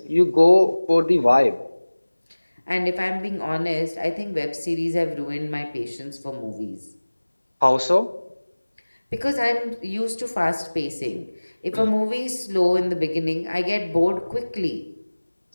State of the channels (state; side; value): inverted; both; correlation -1.00